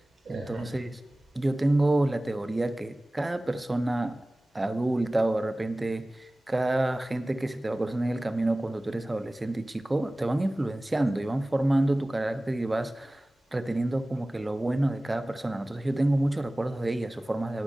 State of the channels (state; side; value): normal; both; correlation 0.98